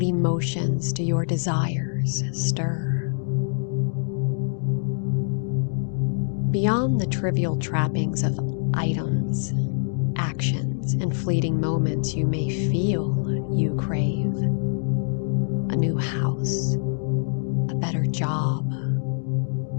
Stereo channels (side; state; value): right; silent; digital silence